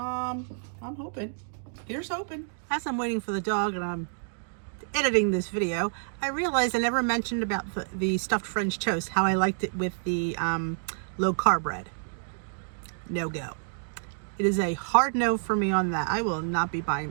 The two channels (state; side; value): silent; left; digital silence